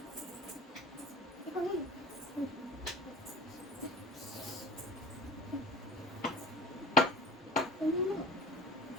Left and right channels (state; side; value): normal; both; correlation 0.39